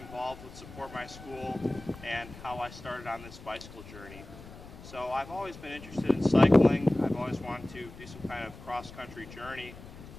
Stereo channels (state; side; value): noise; left; rumble, 16 dB below the sound